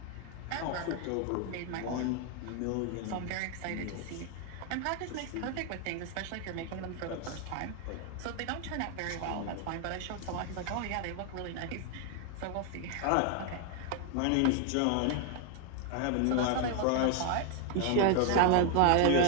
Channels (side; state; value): both; different; correlation 0.00